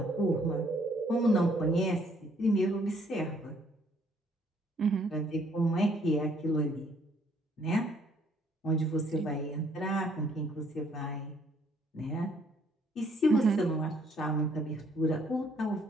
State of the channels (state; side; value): normal; both; correlation 0.65